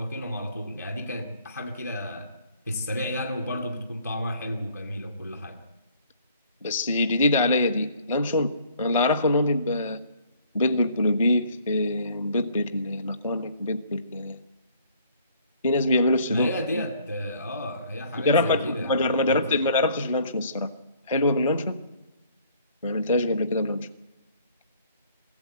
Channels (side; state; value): both; inverted; correlation -0.59